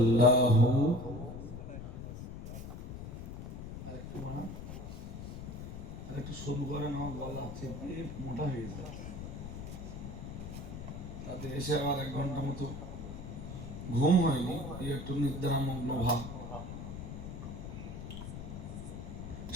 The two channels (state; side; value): noise; left; rumble, 9 dB below the sound